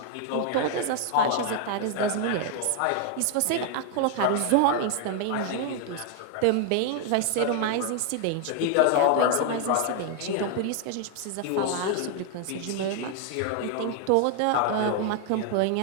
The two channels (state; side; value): different; both; correlation 0.00